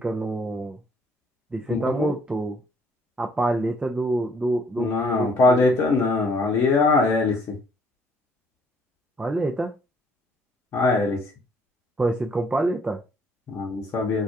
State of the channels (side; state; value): both; normal; correlation 0.62